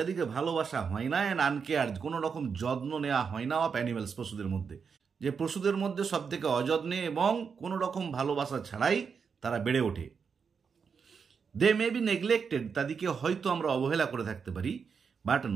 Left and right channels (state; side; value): quieter; left; 6.0 dB